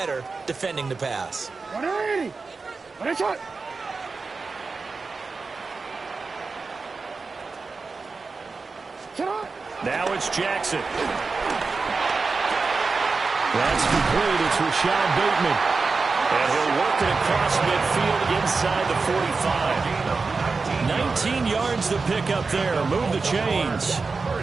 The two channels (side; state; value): left; quieter; 4.3 dB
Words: defending the pass? 180. Now it's Jackson. That's complete. It's Rashad Bateman. And he'll work it across midfield inside the 45. 19 yards to pick up there. Move the chains.